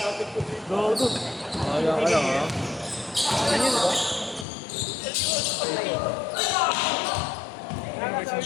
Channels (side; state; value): right; drops out; at 4.5 s